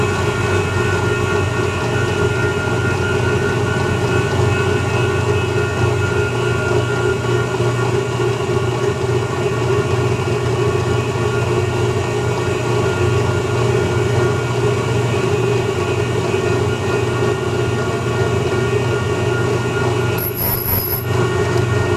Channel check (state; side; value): identical; both; correlation 1.00